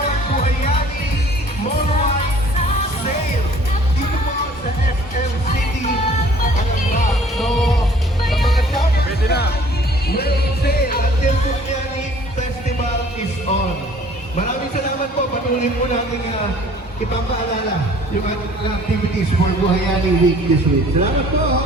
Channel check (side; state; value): both; normal; correlation 0.54